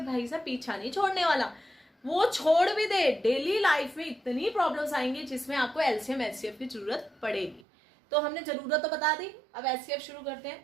भाई साहब पीछा नहीं छोड़ने वाला। वो छोड़ भी दे, डेली लाइफ में इतनी प्रॉब्लम्स आएंगी जिसमें आपको एलसीएम HCF की जरूरत पड़ेगी। तो हमने जरूरत तो बता दी, अब HCF शुरू करते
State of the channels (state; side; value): drops out; left; at 7.7 s